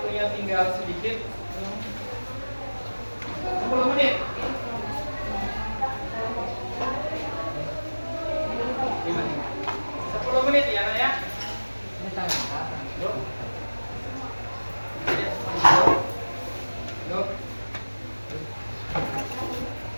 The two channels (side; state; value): both; inverted; correlation -1.00